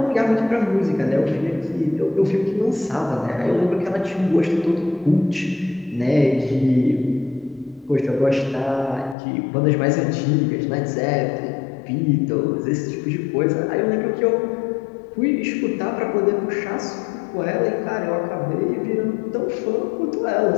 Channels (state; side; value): drops out; right; at 9.2 s